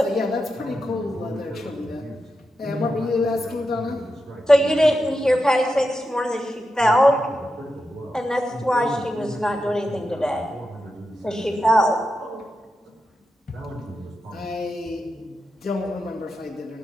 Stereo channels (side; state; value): both; normal; correlation 0.88